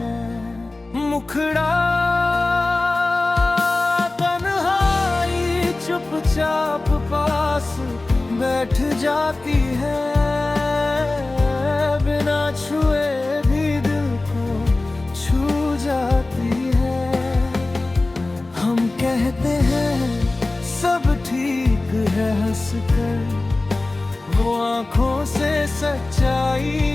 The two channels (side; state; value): right; quieter; 3.1 dB